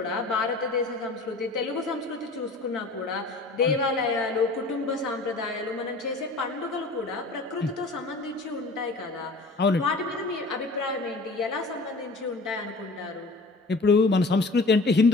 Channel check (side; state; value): right; quieter; 3.3 dB